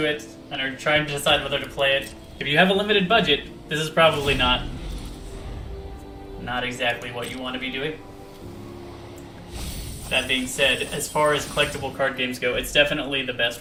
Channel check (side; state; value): both; identical; correlation 1.00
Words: it and are trying to decide whether to play it, if you have a limited budget, this is probably not exactly what you want to be doing. That being said, as far as collectible card games go, it's definitely the